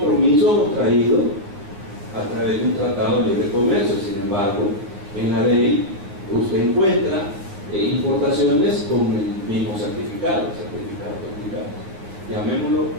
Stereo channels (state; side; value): late; left; 10 ms